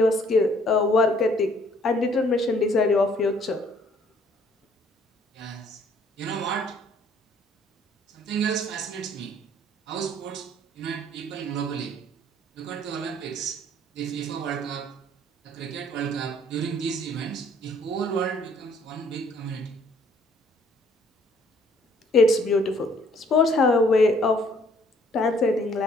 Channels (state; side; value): normal; both; correlation 0.60